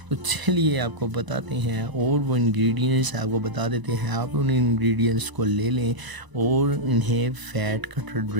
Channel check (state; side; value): late; left; 1.0 ms